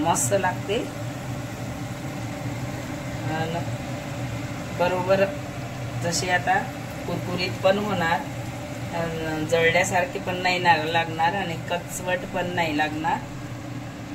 लागते. बरोबर जसे आता कुरकुरीत पण होणार, जळल्यासारखे पण नाही लागणार आणि कचवट पण नाही लागणार.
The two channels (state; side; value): identical; both; correlation 1.00